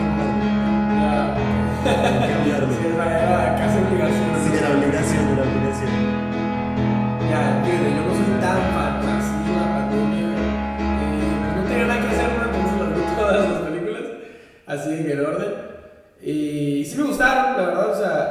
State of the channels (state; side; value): identical; both; correlation 1.00